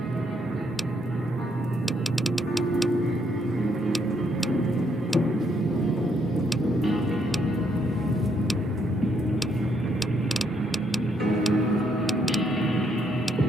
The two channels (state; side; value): normal; both; correlation 0.73